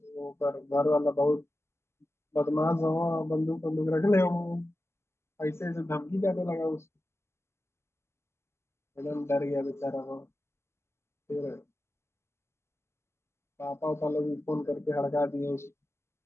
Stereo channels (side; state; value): right; late; 0.13 ms